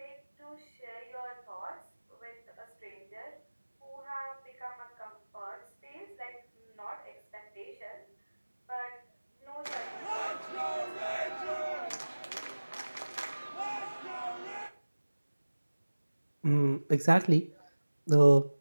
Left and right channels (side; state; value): both; inverted; correlation -1.00